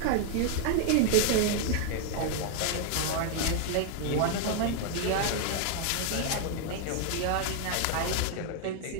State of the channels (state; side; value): different; both; correlation 0.00